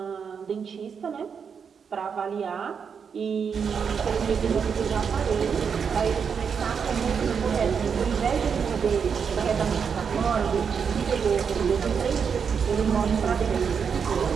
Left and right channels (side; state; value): left; quieter; 6.5 dB